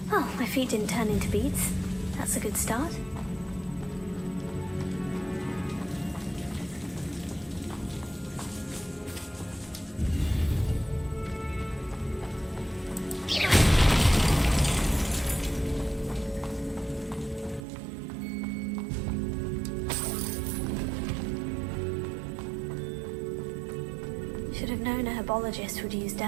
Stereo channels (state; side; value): drops out; left; at 17.6 s